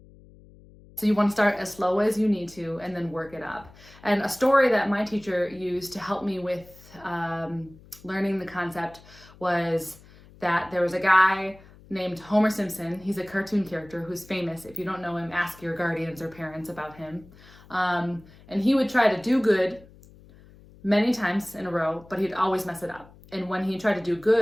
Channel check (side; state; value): left; noise; hum, 23 dB below the sound